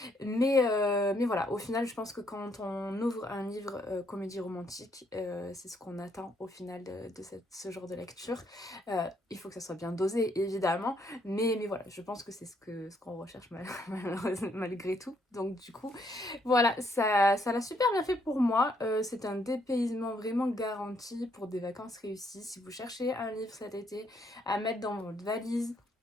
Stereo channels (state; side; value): normal; both; correlation 0.71